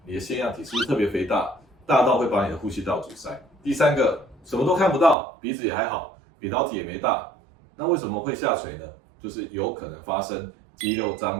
你的腺样体是不是特别肥大，大到会把你的呼吸道阻塞。第三个，什么都看不到，鼻子也还好，扁桃体也没大，那为什么会下垂呢？就是有可能发生肌肉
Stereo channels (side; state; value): left; drops out; at 5.2 s